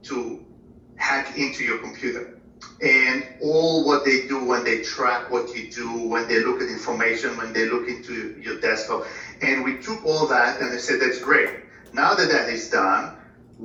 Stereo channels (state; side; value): identical; both; correlation 1.00